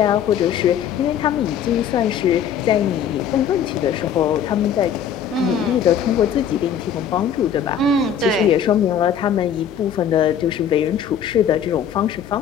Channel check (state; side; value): quieter; right; 8.3 dB